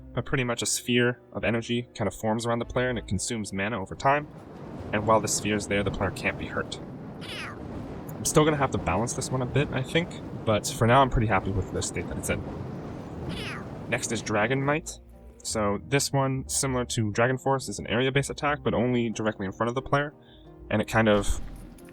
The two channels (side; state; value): both; identical; correlation 1.00